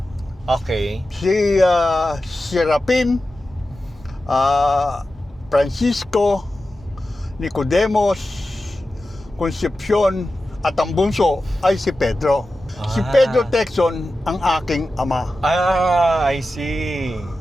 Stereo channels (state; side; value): normal; both; correlation 0.93